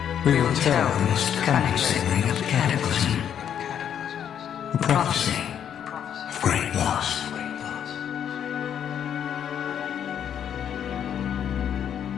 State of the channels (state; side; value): quieter; right; 9.1 dB